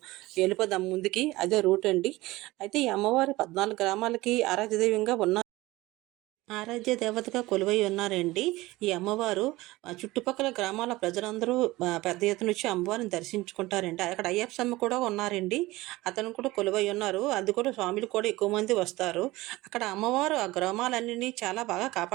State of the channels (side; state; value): left; quieter; 19.4 dB